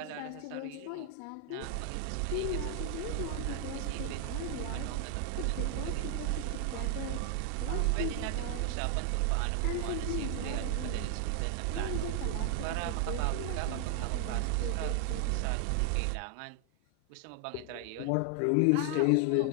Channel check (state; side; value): different; both; correlation 0.00